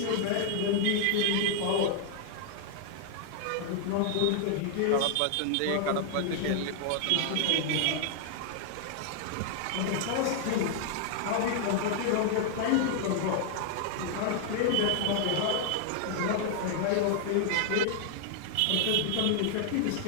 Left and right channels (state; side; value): different; both; correlation 0.00